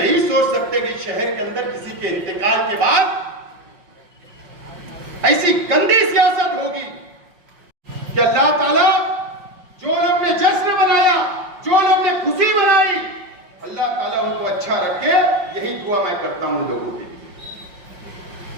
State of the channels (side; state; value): left; late; 5.6 ms